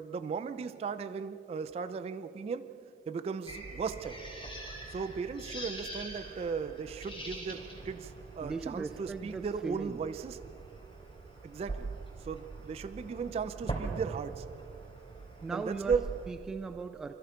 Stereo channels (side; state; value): left; quieter; 4.8 dB